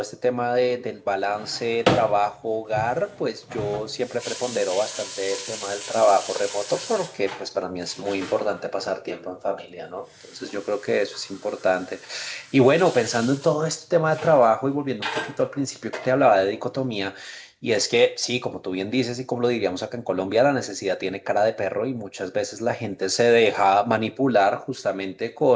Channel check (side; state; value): both; identical; correlation 1.00